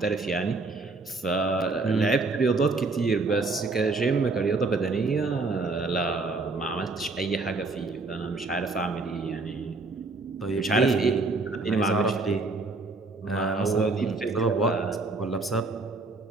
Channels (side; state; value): left; quieter; 3.6 dB